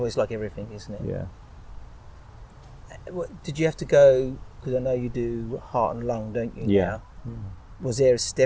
It's like everything, isn't it? Yeah. Did you have to go, because I know you do heart and lung, don't you, Yeah. now? Was there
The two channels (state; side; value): identical; both; correlation 1.00